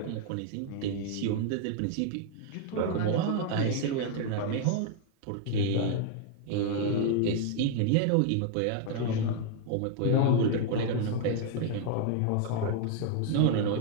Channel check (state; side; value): different; both; correlation 0.00